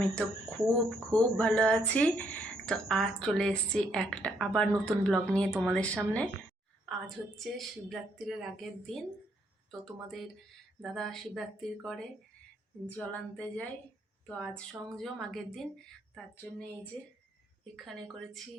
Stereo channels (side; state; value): both; normal; correlation 0.72